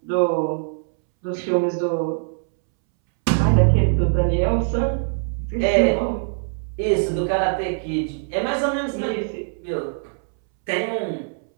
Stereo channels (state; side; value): silent; left; 64 dB below the other